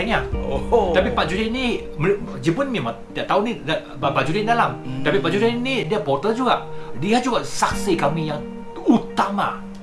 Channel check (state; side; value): identical; both; correlation 1.00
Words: Tapi Pak Judin ni Jepun memang tak tahu ni Pak Judin dalam. Tapi Pak Judin ni dia porter juga. Dia juga saksi kami yang utama